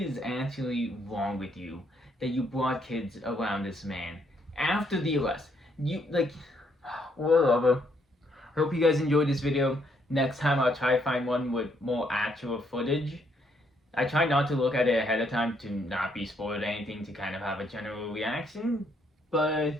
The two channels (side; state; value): both; normal; correlation 0.72